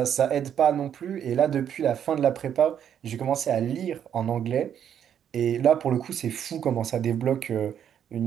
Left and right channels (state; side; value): quieter; left; 9.1 dB